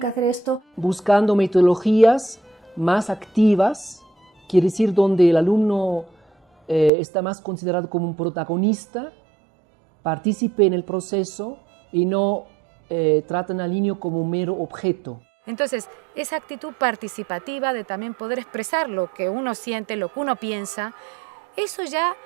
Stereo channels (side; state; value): left; drops out; at 6.9 s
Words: hacer esto. Buscando metodologías más activas, quiere decir donde el alumno está más considerado como un protagonista, participe en el proceso y no tratan al niño como un mero objeto. Entonces, esa actitud participativa de también poder expresar lo que uno siente, lo que uno piensa, eso ya